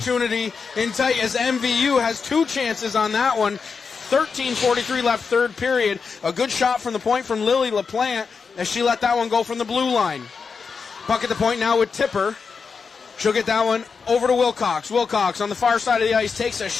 in tight as MVU has 2 chances on that one. 13:43 left third period. A good shot from the point from Lily LaPlante as she let that one go from the blue line. Puck at the point now with Tipper. She'll get that one over to Wilcox. Wilcox on the far side of the ice takes a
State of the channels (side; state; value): right; quieter; 5.4 dB